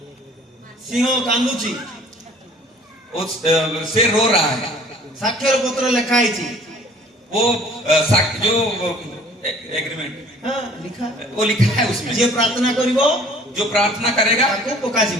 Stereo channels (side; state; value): both; normal; correlation 0.52